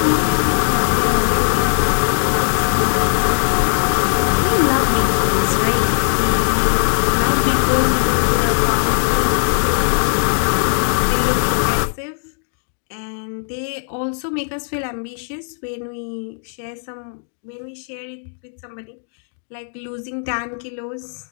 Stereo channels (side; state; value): right; silent; digital silence